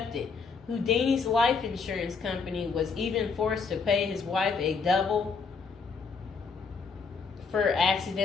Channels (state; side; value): quieter; right; 5.1 dB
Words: Houdini's life insurance company was even forced to pay his wife a double for